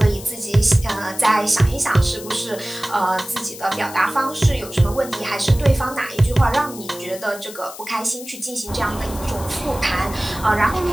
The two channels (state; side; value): noise; left; hiss, 14 dB below the sound